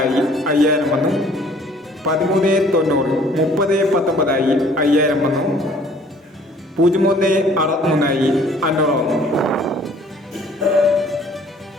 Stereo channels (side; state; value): both; normal; correlation 0.56